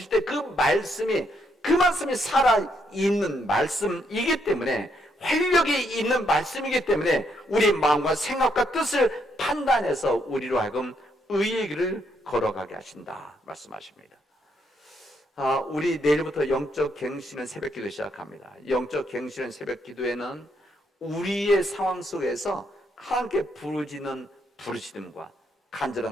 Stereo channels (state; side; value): normal; both; correlation 0.75